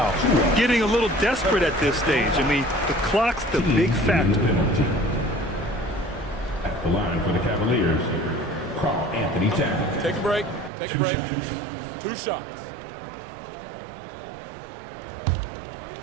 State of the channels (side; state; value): left; drops out; at 10.7 s